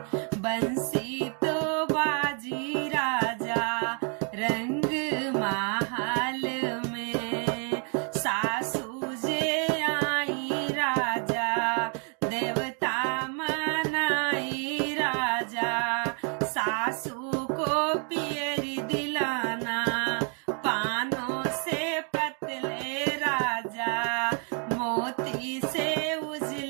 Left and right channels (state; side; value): quieter; left; 39.6 dB